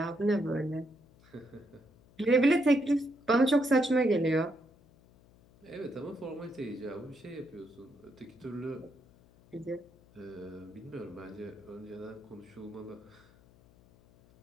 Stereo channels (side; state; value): left; noise; hum, 27 dB below the sound